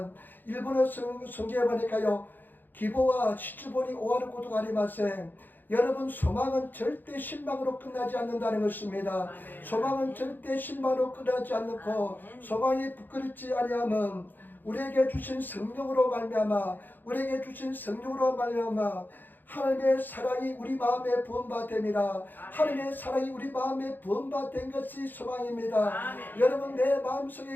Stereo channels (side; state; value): right; late; 0.089 ms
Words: 일본어 성경에 보니까요 기보와 시주본이 오하르 고도가리마세. 여러분 소망은 절대 실망으로 끝나지 않는다는 것입니다. 소망은 절대 실망으로 끝나지 않고 소망이 부끄럽지 아니하면 우리에게 주신 성령으로 말미암아 하나님의 사랑이 우리 마음에 부음받됨이라. 하나님의 사랑이 우리 마음에 부음받된 것이 소망입니다. 여러분 내